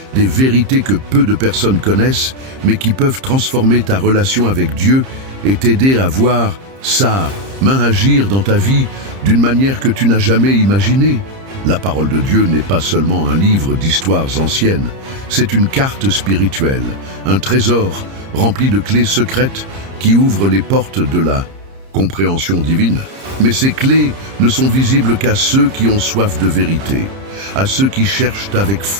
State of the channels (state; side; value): late; left; 30 ms